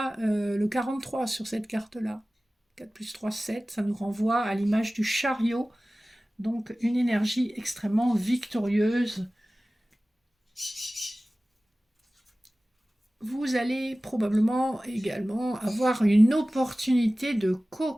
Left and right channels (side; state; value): both; normal; correlation 0.97